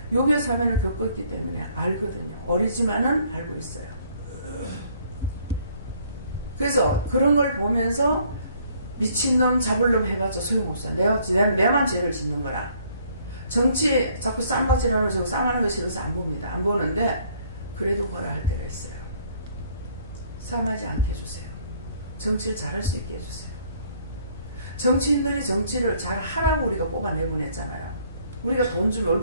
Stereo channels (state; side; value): inverted; both; correlation -0.63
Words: 요괴 사면을 겪었기 때문에 알거든요. 어리지만은 알고 있어요. 그래서 그런 걸 보면서 미친놈 잡을놈 해봤자 소용없어. 내만 죄를 짓는 거라. 정치 자꾸 쌈박질하는 거 쌍하는 거 싫어서 안 봅니다. 안 보는데 그래도 뭐라 할 때가 있어요. 싸움하지 않게 해주세요. 정치를 잘할 수 있게 해주세요. 정치인들이 정치를 잘 하라고 우리가 뽑아내보냈잖아요. 우리가 돈 주면